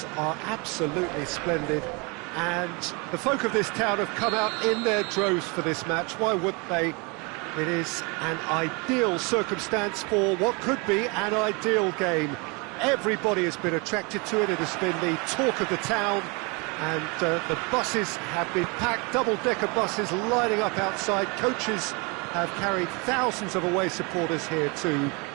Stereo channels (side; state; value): left; quieter; 30.0 dB